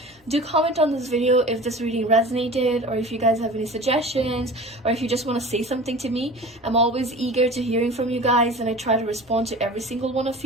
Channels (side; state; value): both; normal; correlation 0.38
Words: Do comment on this video if this reading resonated, or if you guys have any suggestions, or if you just want to say something to me. I'm always eager to hearing from you guys, and I try to respond to every single one of